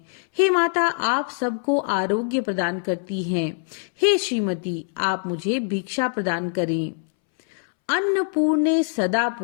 हे माता, आप सबको आरोग्य प्रदान करती हैं। हे श्रीमती, आप मुझे भिक्षा प्रदान करें। अन्नपूर्णे सदा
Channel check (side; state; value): right; silent; 63 dB below the other